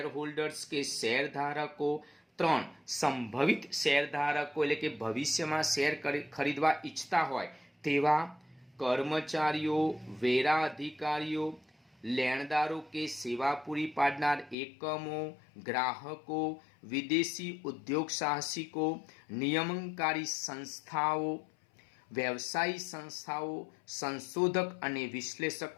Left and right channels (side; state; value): right; drops out; at 14.6 s